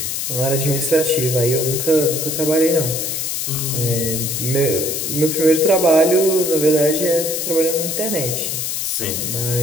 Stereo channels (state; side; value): noise; left; hiss, 2 dB below the sound